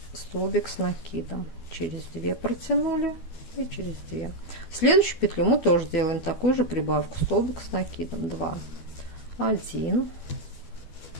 столбик с накидом, через 2 протянули и через 2. В следующую петлю мы тоже делаем такую же прибавку, столбик с накидом, 2, 1,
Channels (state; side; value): late; right; 12 ms